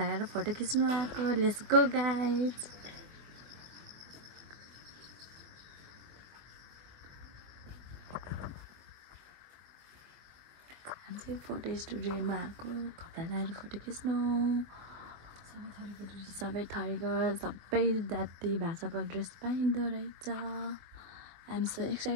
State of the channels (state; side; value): late; left; 23 ms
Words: फोटो खिच्नु आएको लेट्स गो गाइज हामी चाहिँ फोटो स्टुडियोमा आएको कपडा लगाएर फोटो खिच्नु सबै थरीको सबै जाति भाषाको ड्रेस पाइँदो रहेछ आई एम सो